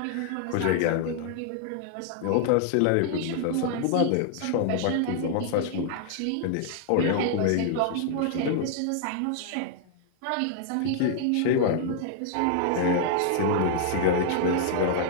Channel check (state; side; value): different; both; correlation -0.01